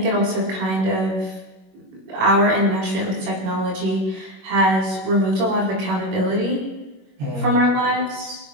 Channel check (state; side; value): late; left; 21 ms